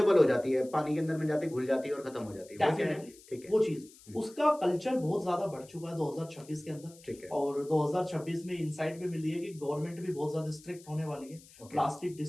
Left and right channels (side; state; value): left; noise; hiss, 23 dB below the sound